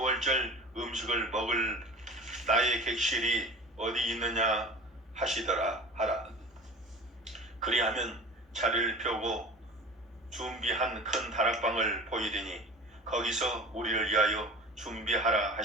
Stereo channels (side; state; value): both; normal; correlation 0.38